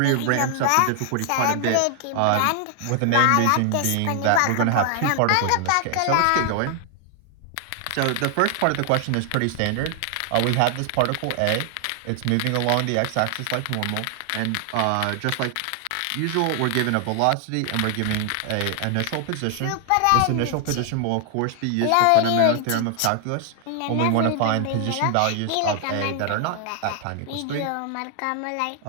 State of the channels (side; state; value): both; different; correlation 0.00